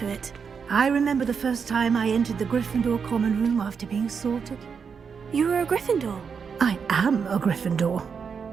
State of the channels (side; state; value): left; quieter; 6.2 dB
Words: it. I remember the first time I entered the Gryffindor common room after being sorted. You were a Gryffindor? I am a Gryffindor.